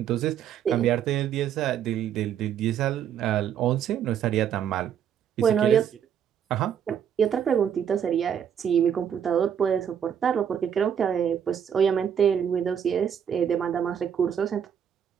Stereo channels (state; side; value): quieter; left; 8.6 dB